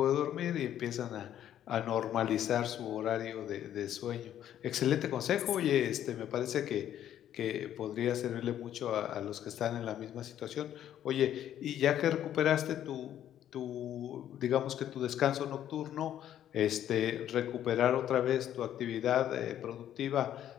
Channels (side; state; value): right; quieter; 11.0 dB